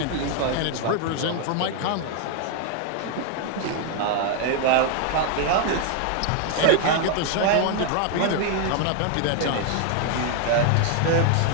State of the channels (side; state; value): both; different; correlation 0.00